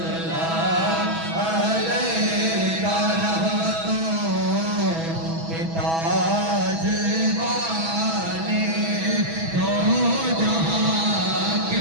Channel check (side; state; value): left; late; 6.1 ms